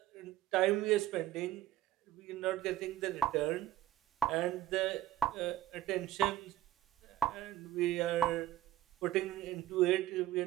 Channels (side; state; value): left; quieter; 13.2 dB